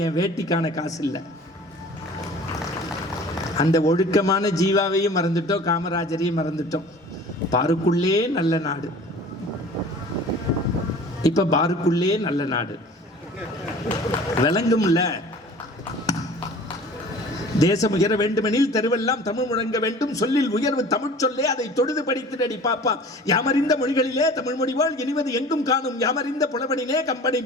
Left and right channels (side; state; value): both; normal; correlation 0.44